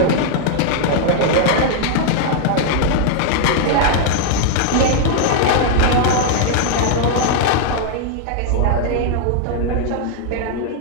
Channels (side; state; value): both; different; correlation 0.00